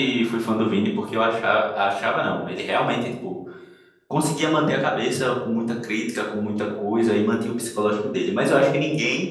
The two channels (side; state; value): both; identical; correlation 1.00